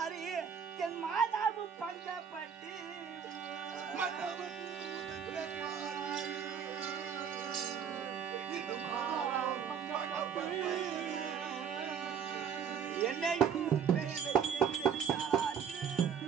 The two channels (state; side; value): quieter; left; 7.5 dB